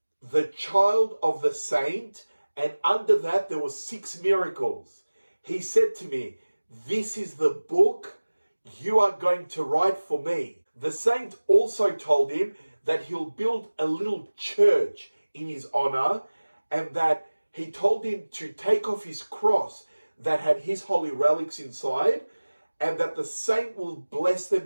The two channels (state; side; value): inverted; both; correlation -1.00